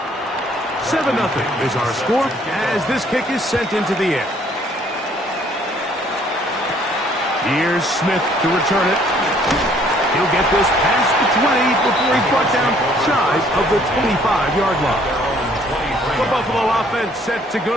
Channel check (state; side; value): normal; both; correlation 0.62